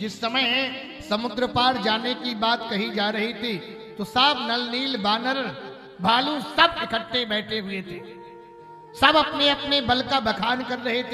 समय समुद्र पार जाने की बात कही जा रही थी तो सब नल नील बानर भालू सब इकट्ठे बैठे हुए थे। सब अपने अपने बल का बखान कर रहे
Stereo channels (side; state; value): both; identical; correlation 1.00